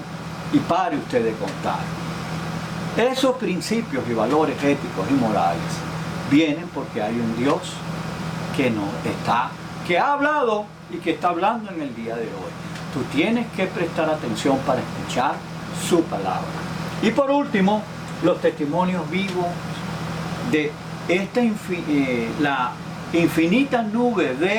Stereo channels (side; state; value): both; identical; correlation 1.00